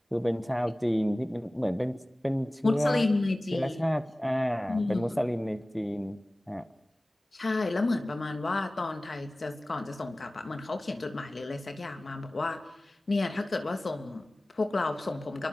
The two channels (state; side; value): normal; both; correlation 0.98